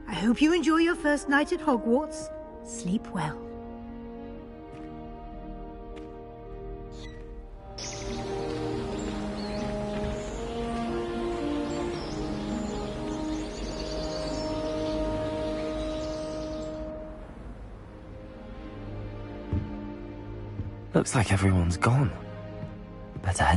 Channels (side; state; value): both; identical; correlation 1.00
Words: I hope you enjoy your first night at Hogwarts. Sleep well. Looks like everyone's gone. Better